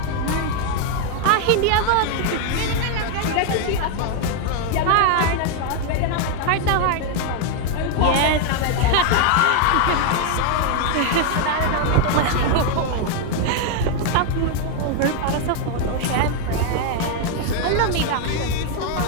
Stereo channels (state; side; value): different; both; correlation 0.00